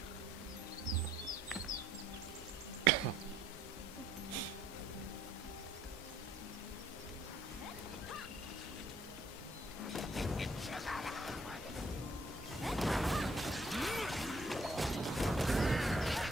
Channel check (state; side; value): normal; both; correlation 0.64